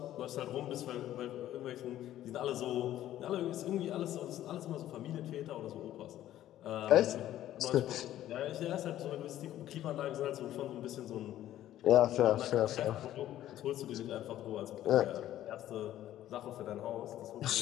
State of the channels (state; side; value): quieter; right; 12.9 dB